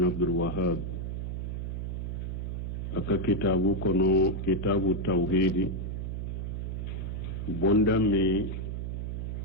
عبد الوهاب aka kitabu kono kitabu tawhidi bonda mi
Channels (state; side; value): noise; right; hum, 4 dB below the sound